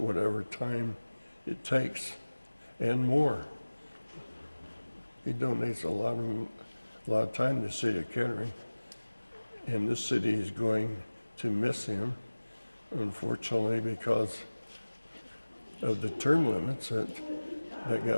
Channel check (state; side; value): inverted; both; correlation -1.00